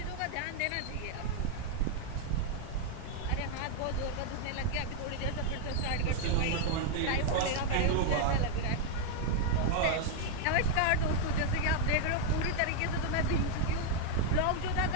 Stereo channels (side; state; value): both; different; correlation 0.00